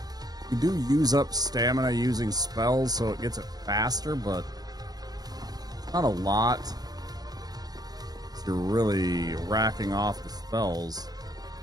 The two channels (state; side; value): late; left; 0.19 ms